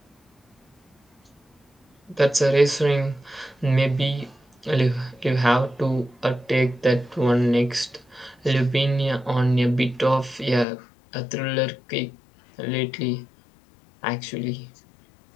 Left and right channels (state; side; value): drops out; right; at 10.7 s